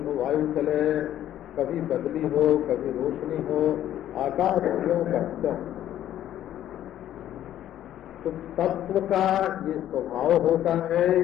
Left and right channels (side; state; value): right; quieter; 11.9 dB